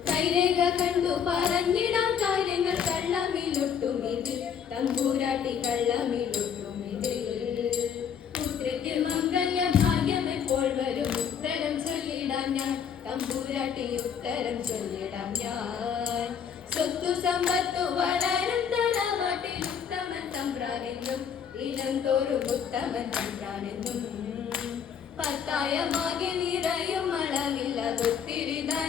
കൈരേഖ കണ്ടു പറഞ്ഞിടാം കാര്യങ്ങൾ കള്ളമിലൊട്ടുമിതിൽ, തമ്പൂരാട്ടി കള്ളമിലൊട്ടുമിതിൽ. പുത്രിക്ക് മംഗല്യ ഭാഗ്യം എപ്പോൾ വരും, ഉത്തരം ചൊല്ലിടാം ഞാൻ, തമ്പൂരാട്ടി ഉത്തരം ചൊല്ലിടാം ഞാൻ. സ്വത്തു സമ്പത്തു വളരും തറവാട്ടിൽ ഉത്തമൻ തമ്പ്രാനെന്നും, ഇനം തോറും ഉത്തമൻ തമ്പ്രാനെന്നും. പത്തായമാകെ നിറയും അളവില്ലാതൊത്തിരി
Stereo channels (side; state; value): right; quieter; 7.7 dB